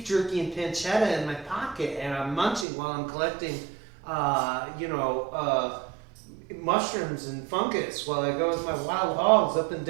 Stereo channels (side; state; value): left; drops out; at 2.7 s